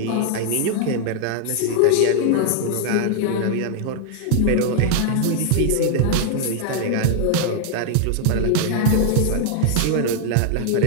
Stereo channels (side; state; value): both; different; correlation 0.00